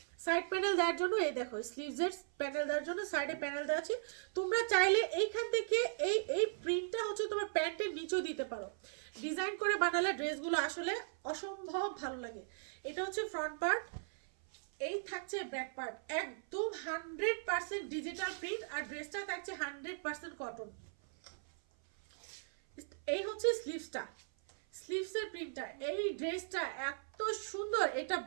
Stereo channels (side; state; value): left; silent; 52 dB below the other